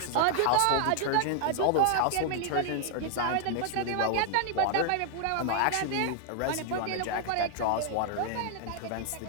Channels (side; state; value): both; different; correlation 0.00